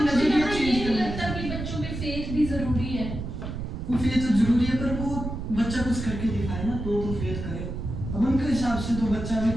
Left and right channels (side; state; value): right; noise; rumble, 6 dB below the sound